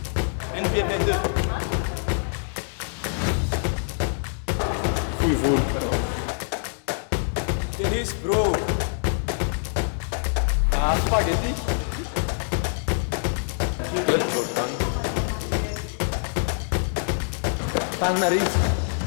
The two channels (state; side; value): silent; right; digital silence